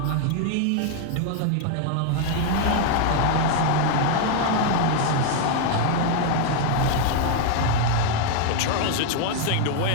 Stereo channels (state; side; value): different; both; correlation 0.01